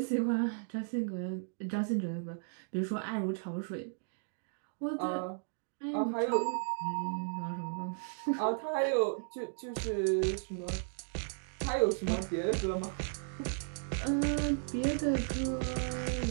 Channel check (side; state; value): left; silent; digital silence